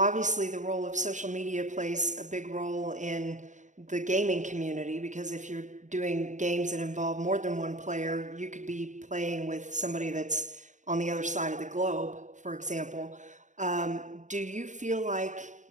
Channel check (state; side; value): late; left; 0.36 ms